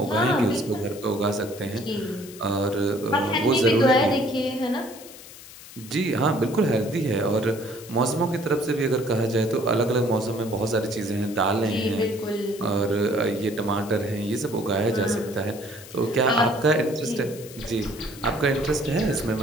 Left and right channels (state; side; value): noise; left; hiss, 17 dB below the sound